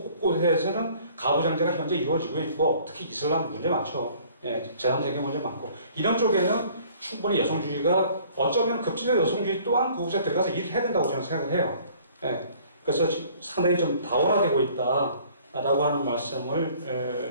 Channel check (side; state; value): both; inverted; correlation -0.55